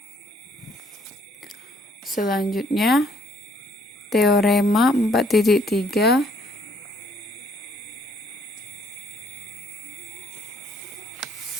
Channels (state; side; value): normal; both; correlation 0.65